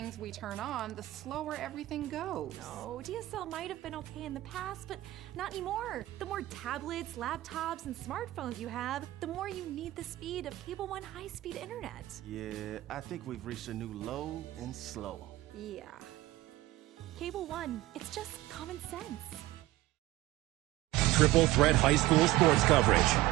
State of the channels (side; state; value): left; quieter; 16.9 dB